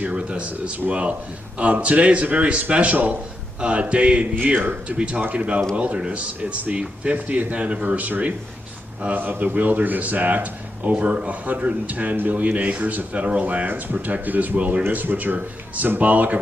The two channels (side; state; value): both; normal; correlation 0.85